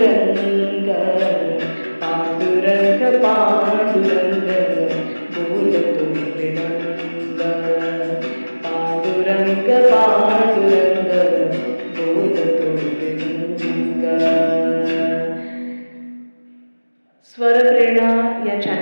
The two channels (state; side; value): inverted; both; correlation -1.00